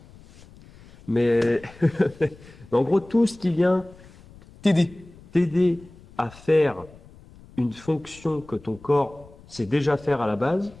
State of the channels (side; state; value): left; noise; rumble, 23 dB below the sound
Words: Mais, mais en gros, tout ce qui vient t'aider. t'aider à faire une fonction que ton corps sait déjà faire à la base,